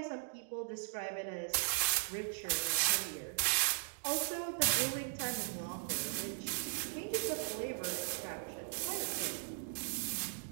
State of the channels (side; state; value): left; silent; digital silence